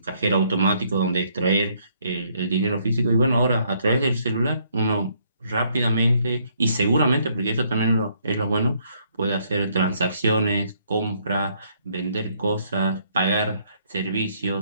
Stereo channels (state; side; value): inverted; both; correlation -0.68